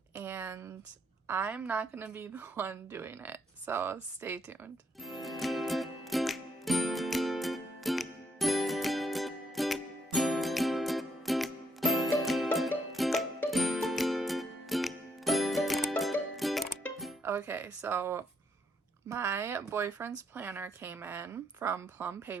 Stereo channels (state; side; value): normal; both; correlation 0.74